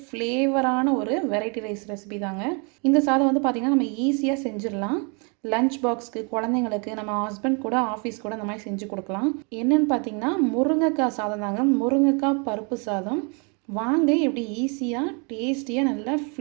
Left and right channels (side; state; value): left; quieter; 34.8 dB